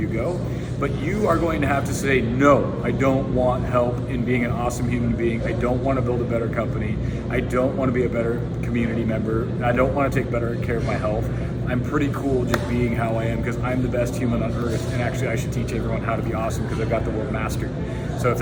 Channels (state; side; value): identical; both; correlation 1.00